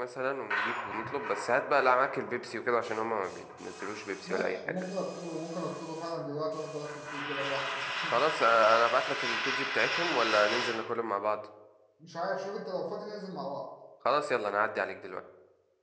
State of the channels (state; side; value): identical; both; correlation 1.00